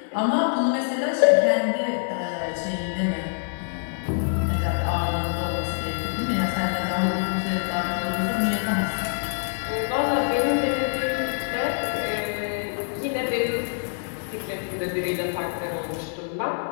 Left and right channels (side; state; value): right; silent; digital silence